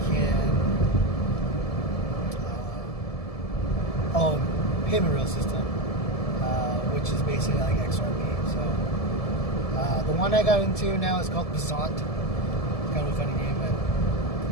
Kin, payment rail system, which is basically like XRP. So the one I got into now is called BearZ's. It's kind of a funny name, but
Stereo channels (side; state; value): right; late; 1.7 ms